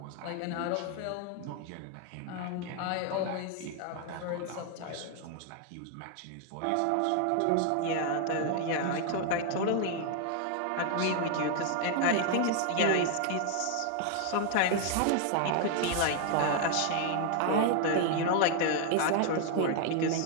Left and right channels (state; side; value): different; both; correlation 0.00